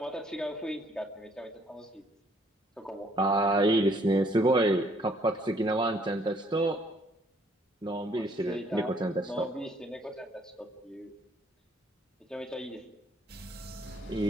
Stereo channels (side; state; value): both; normal; correlation 0.64